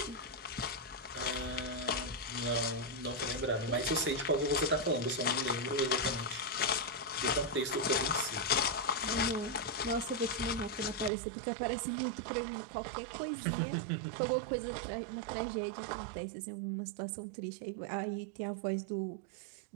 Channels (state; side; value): drops out; left; at 11.1 s